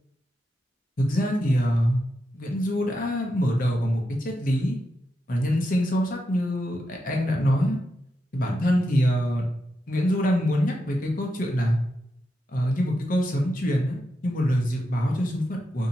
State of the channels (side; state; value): both; normal; correlation 0.86